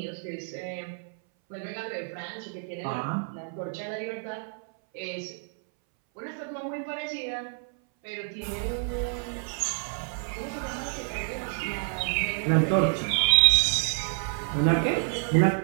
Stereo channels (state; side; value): silent; left; 59 dB below the other